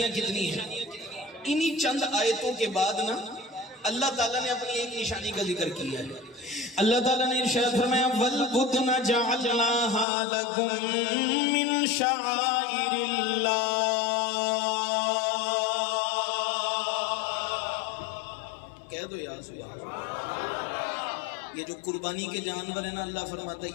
کتنی ہیں؟ انہی چند آیتوں کے بعد نا اللہ تعالیٰ نے اپنی ایک نشانی کا ذکر کیا ہے۔ اللہ تعالیٰ نے ارشاد فرمایا وَالْبُدْنَ جَعَلْنَاهَا لَكُم مِّن شَعَائِرِ اللَّهِ۔ کہہ دو یا سبحان اللہ۔ یہ جو قربانی کے جانور ہیں نا، اللہ فرماتا ہے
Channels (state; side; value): drops out; right; at 10.1 s